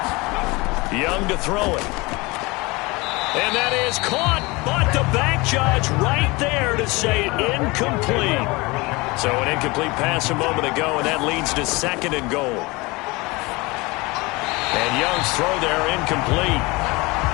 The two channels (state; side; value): quieter; right; 24.1 dB